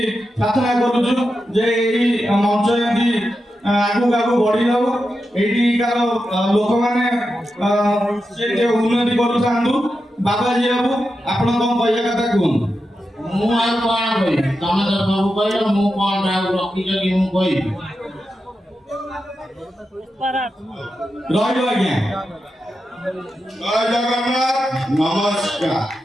ପ୍ରାର୍ଥନା କରୁଛୁ ଯେ ଏହି ମଞ୍ଚ ଏମିତି ଆଗକୁ ଆଗକୁ ବଢି ଯାଉ, ଏଇଠିକାର ଲୋକମାନେ ସେ ଉନ୍ନତି କରୁଥାନ୍ତୁ। ବାବାଜୀ ବାବୁ ଆପଣ କଣ କହିବା କଥା କୁହନ୍ତୁ। ମୁଁ ଆଉ କଣ କହିବି, ତମେ ତ ସବୁ କହିଲ, ମୁଁ କଣ ଆଉ ରଖିଛ କି ମୁଁ କହିବି। ରହିବ ଆଜ୍ଞା। ଜୟ ଜଗନ୍ନାଥ, ନମସ୍କାର।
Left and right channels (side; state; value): both; normal; correlation 0.89